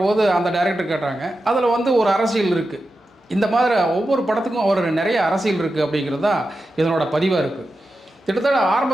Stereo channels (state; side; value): normal; both; correlation 0.91